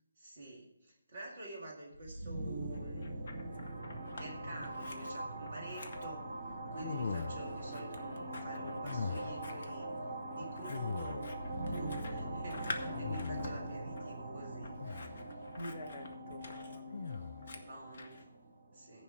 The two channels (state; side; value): inverted; both; correlation -0.77